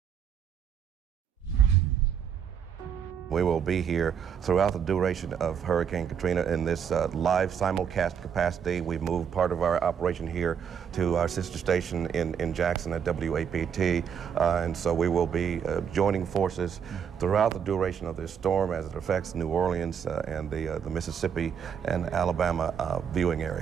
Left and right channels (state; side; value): quieter; left; 7.7 dB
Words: We will be here throughout the duration of Hurricane Katrina in this live simulcast capacity. We've moved part of our operation here to our sister station in Jackson at WAPT, and so we will be joining forces throughout the duration of this storm as it affects New Orleans and the Mississippi and Alabama viewing